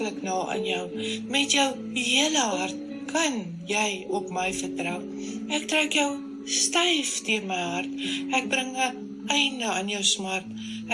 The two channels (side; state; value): both; identical; correlation 1.00